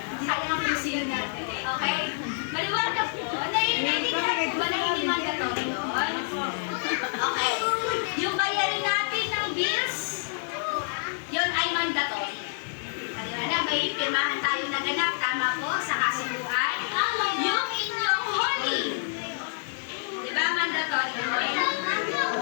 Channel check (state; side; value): silent; right; digital silence